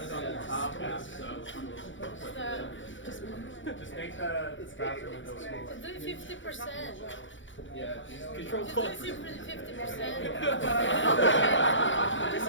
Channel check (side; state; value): right; late; 0.56 ms